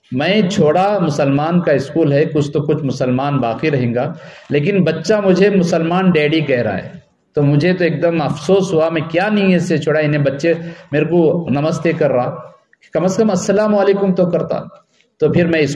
میں چھوڑا مسلمان کا اسکول ہے، کچھ تو کچھ مسلمان باقی رہیں گا، لیکن بچہ مجھے مسلمان ڈیڈی کہہ رہا ہے، تو مجھے تو ایک دم افسوس ہوا، میں کیا نیت سے چھوڑا، انہیں بچے میرے کو نمستے کر رہا، کم از کم السلام علیکم تو کرتا۔ تو پھر میں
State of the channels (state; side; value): identical; both; correlation 1.00